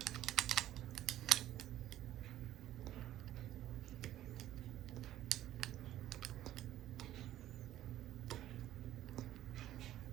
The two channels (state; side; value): quieter; left; 13.1 dB